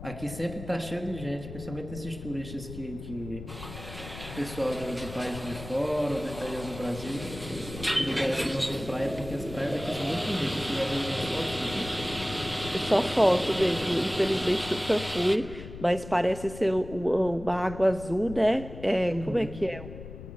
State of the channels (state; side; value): noise; left; rumble, 12 dB below the sound